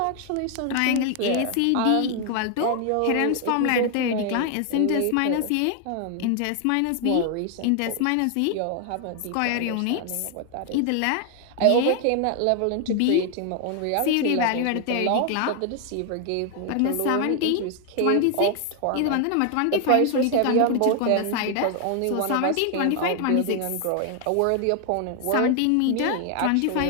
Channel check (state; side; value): different; both; correlation 0.00